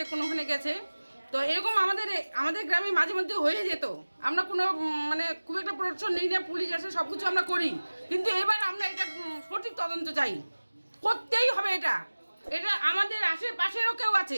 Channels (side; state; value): both; inverted; correlation -1.00